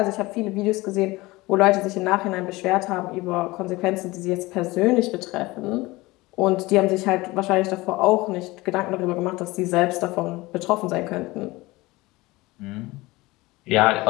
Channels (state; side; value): quieter; right; 21.0 dB